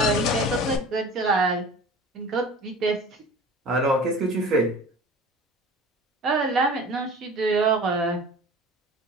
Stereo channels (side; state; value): both; normal; correlation 0.40